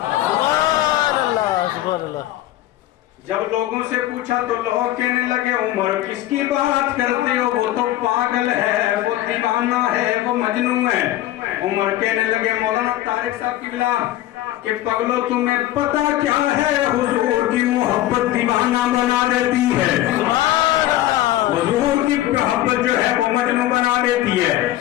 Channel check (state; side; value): quieter; right; 14.6 dB